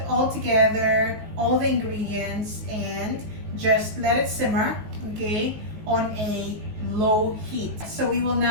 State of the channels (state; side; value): late; left; 19 ms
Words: all together all the ingredients and just let it simmer, okay, on a low heat. So we will